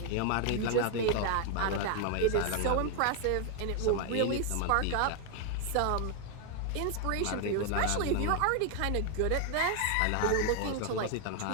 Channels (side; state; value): both; different; correlation 0.00